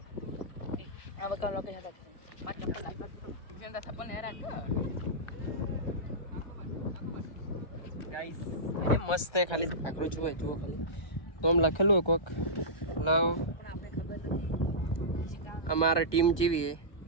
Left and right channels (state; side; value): late; right; 1.2 ms